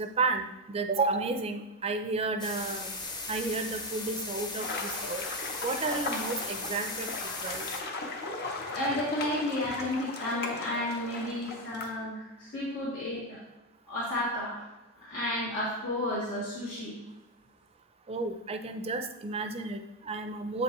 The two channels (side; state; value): both; normal; correlation 0.09